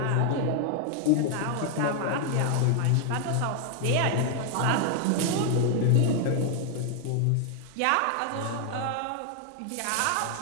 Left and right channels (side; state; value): both; different; correlation 0.00